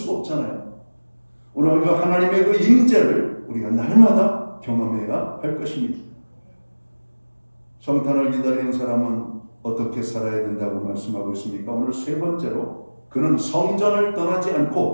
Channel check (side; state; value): both; inverted; correlation -1.00